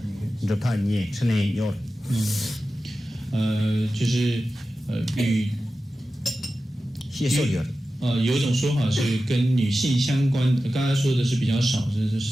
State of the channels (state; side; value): normal; both; correlation 0.93